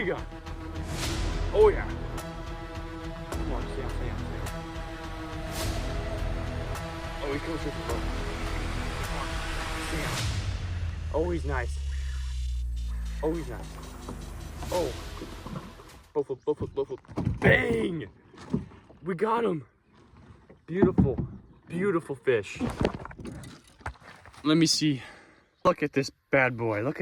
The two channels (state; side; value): identical; both; correlation 1.00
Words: one. Oh yeah. Come on, stay on. Oh, he comes with the boat. Oh, he's nice. Oh, he's nice. Oh. Both. Bang! We got him. Beautiful, beautiful fish. Let me see. Look at this bad boy. Look